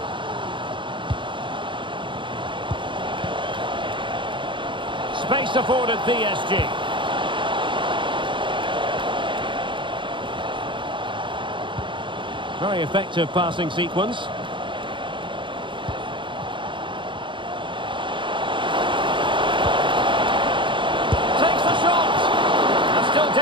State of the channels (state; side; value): late; left; 0.24 ms